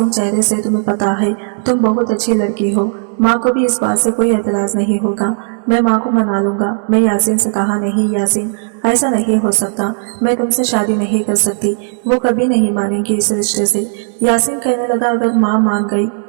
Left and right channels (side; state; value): left; silent; digital silence